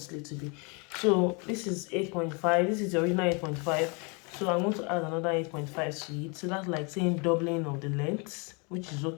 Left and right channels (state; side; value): quieter; right; 32.6 dB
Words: sleeve to be. So this is 8.5, this is the original 8.5, so I'm going to add another 8.5 to it. So that's like saying doubling of the length, which is